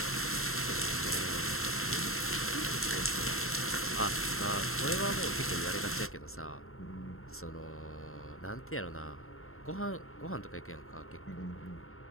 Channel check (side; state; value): right; late; 0.62 ms